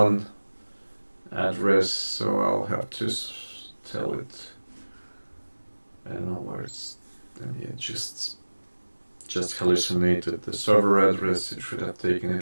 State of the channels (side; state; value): both; inverted; correlation -1.00